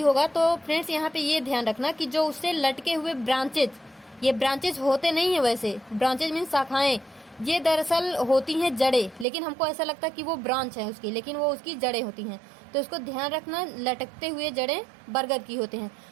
होगा। तो फ्रेंड्स, यहाँ पे ये ध्यान रखना कि जो उससे लटके हुए ब्रांचेज, ये ब्रांचेज होते नहीं है, वैसे ब्रांचेज मीन शाखाएं, ये दरअसल होती हैं जड़ें, लेकिन हमको ऐसा लगता है कि वो ब्रांच है उसकी, लेकिन वो उसकी जड़ें होती हैं। तो इसको ध्यान रखना, लटकते हुए जड़ें बरगद की होते हैं।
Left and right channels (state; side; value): drops out; left; at 9.2 s